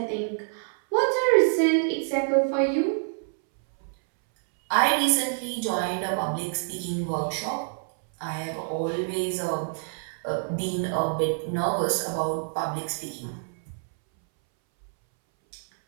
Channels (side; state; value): left; silent; 60 dB below the other